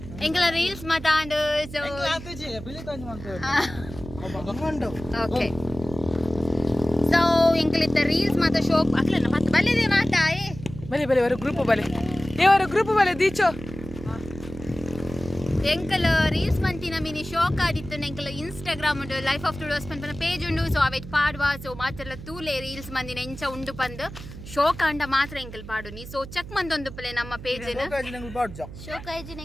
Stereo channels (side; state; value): right; noise; hum, 13 dB below the sound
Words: ಎಂಕಲ ರೀಲ್ಸ್ ಮಾತಾಂಡು ಸೊ ಓಕೆ ಸೊ ಎಂಕಲಿತ್ತ ರೀಲ್ಸ್ ಮಾತ ಶೋಪ್ ಅಕ್ಲನ ಮತ್ತೆ ಬಲ್ಲೆದೆ ಮಾತಾ ಬಲೆ ಬಲೆ ವರ ಗ್ರೂಪ್ ಬಲೆ ಏವರ ಗ್ರೂಪ್ ಬಲೆ ದೀಚೋ ಎಂಕಲ ರೀಲ್ಸ್ ಮಂತಿನ ಮಿನಿ ಶೋಕ್ ಆದಿತ್ತು ಎಂಕಲ ಇನ್ಸ್ಟಾಗ್ರಾಮ್ ಉಂಡು ಲೈಫ್ ಆಫ್ ಟುಡೋಸ್ ಪಂಪನ ಪೇಜ್ ಉಂಡು ಸೊ ಅವೆಟ್ ಪಾಡ್ವಾ ಸೊ ಮಾತೆಲ್ಲ ತೂಲೆ ರೀಲ್ಸ್ ಮಂದಿನ ಎಂಚ ಉಂಡು ಪಂದು ಶೋಕ ಅಂಡ ಮಾತ್ರ ಎಂಕಲ್ ಪಾಡುನಿ ಸೊ ಚೆಕ್ ಮಂದೊಂದು ಪಲೆ ನಮ್ಮ ಪೇಜ್ ಶೋಕ ಐಜಿನ